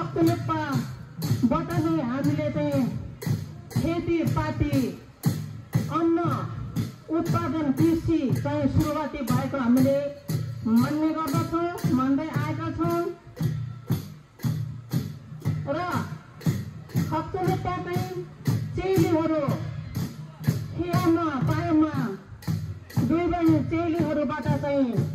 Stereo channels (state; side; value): identical; both; correlation 1.00